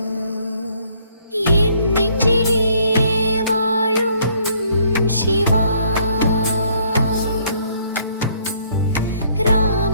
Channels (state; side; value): inverted; both; correlation -0.64